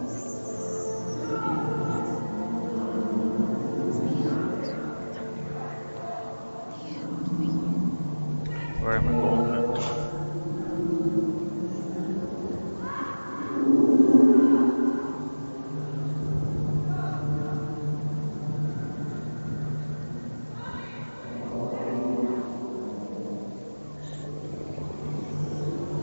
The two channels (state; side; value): inverted; both; correlation -1.00